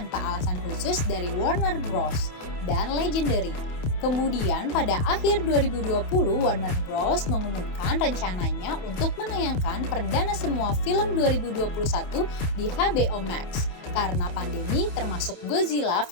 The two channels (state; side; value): late; right; 27 ms